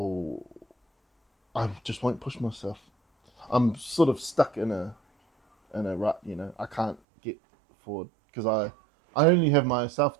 just won't push myself. I'm sort of stuck in a rut, you know. I can't get forward because I only have myself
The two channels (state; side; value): drops out; left; at 7.0 s